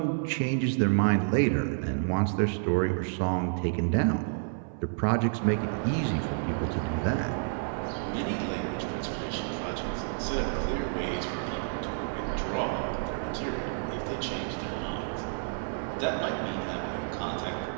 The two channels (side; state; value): left; silent; 58 dB below the other